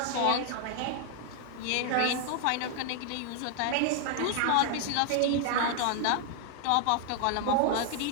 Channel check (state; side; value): different; both; correlation 0.00